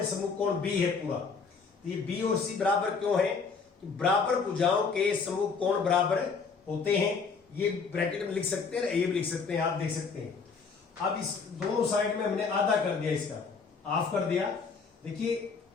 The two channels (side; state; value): right; quieter; 5.1 dB